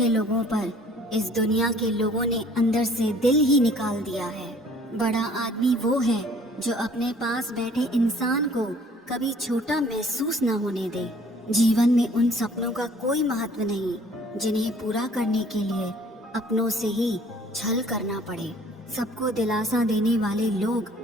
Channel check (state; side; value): normal; both; correlation 0.55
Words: लोगों पर, इस दुनिया के लोगों ने अंदर से दिल ही निकाल दिया है। बड़ा आदमी वो है जो अपने पास बैठे इंसान को कभी छोटा महसूस न होने दे। जीवन में उन सपनों का कोई महत्व नहीं जिन्हें पूरा करने के लिए अपनों से ही छल करना पड़े। सबको दिलासा देने वाले लोग